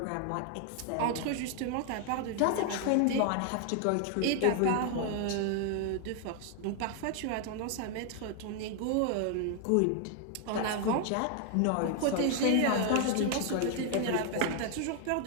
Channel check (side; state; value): both; different; correlation 0.00